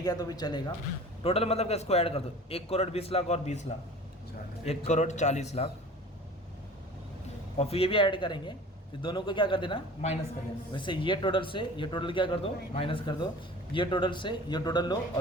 किया तो भी चलेगा। टोटल मतलब इसको ऐड कर दो, 1 करोड़ 20 लाख और 20 लाख, 1 करोड़ 40 लाख। और फिर ये भी ऐड करेंगे, फिर दोनों को क्या कर देना? माइनस कर देना। वैसे ये टोटल से ये टोटल क्या कर दो? माइनस कर दो। ये टोटल से ये टोटल लो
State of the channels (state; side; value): normal; both; correlation 0.42